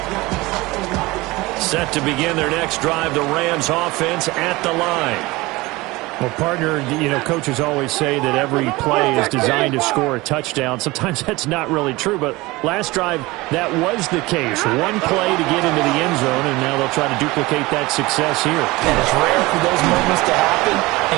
Set to begin their next drive, the Rams offense at the line. Well, partner, you know, coaches always say that every play is designed to score a touchdown. Sometimes that's not really true, but last drive, that was the case. One play to get into the end zone, and now they'll try to duplicate that success here. And it's rare for those moments to happen.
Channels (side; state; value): left; quieter; 21.4 dB